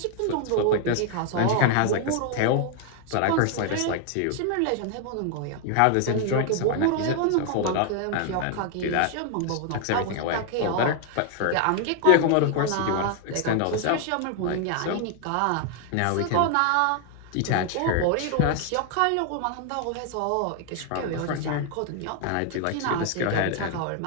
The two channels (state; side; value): different; both; correlation 0.00